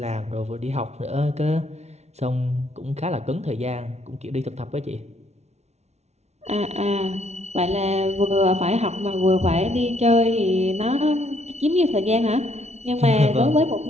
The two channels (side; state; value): left; late; 0.32 ms